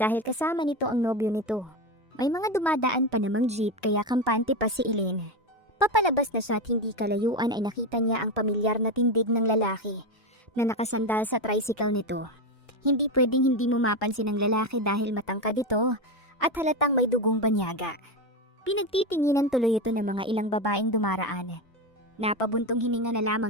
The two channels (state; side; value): normal; both; correlation 0.14